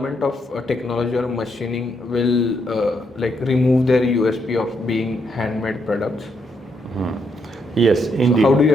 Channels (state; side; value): normal; both; correlation 0.77